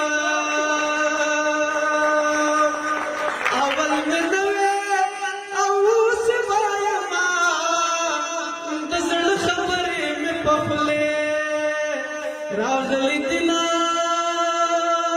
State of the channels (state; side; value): identical; both; correlation 1.00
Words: اول مې نه وې او اوس به یمه د زړه خبرې مې په خولې راغلي دینه